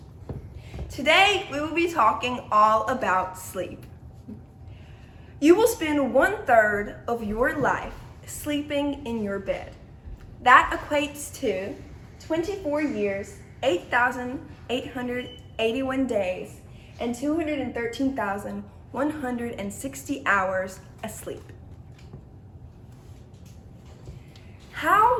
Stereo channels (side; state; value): both; identical; correlation 1.00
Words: Today, we will be talking all about sleep. You will spend 1/3 of your life sleeping in your bed. That equates to 24 years, 8,881 days, and 213,160 hours asleep.